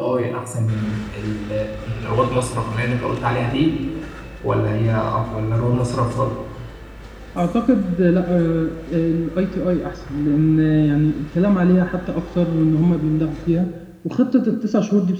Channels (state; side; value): identical; both; correlation 1.00